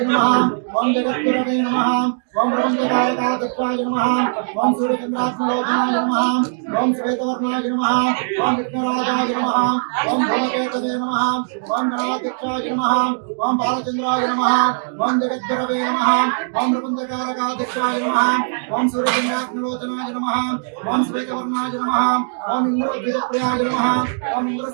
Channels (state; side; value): silent; left; digital silence